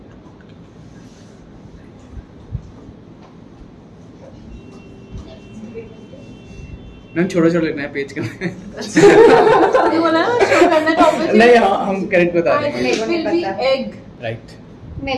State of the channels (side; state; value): both; identical; correlation 1.00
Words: Ma'am छोटा छोटा लिखना है पेज का। बोला ना शो करना टॉपिक। नहीं, हाँ हम करेक्ट बता रहे हैं। मेरे को नहीं पता। Egg right.